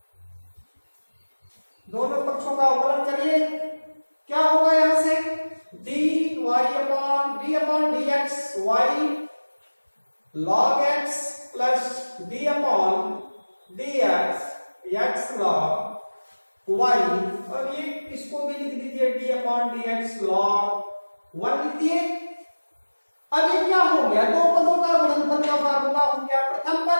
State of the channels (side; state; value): both; inverted; correlation -1.00